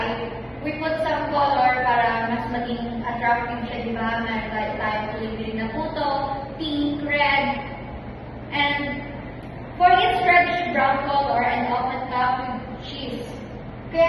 we put some color para mas maging attractive siya, di ba? Meron tayong tuloy na puto, pink, red, and for its reddish brown color and often topped with cheese. Kaya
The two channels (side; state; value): both; identical; correlation 1.00